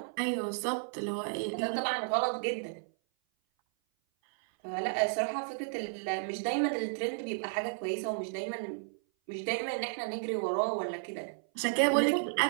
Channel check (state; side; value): silent; left; 56 dB below the other